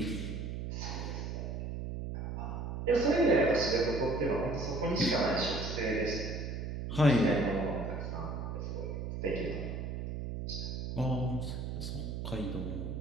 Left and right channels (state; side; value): noise; right; hum, 4 dB below the sound